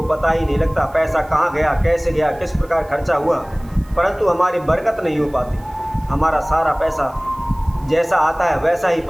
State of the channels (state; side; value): noise; right; hiss, 28 dB below the sound